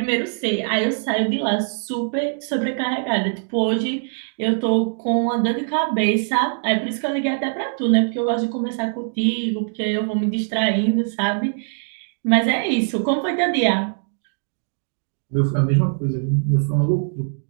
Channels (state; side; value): silent; left; digital silence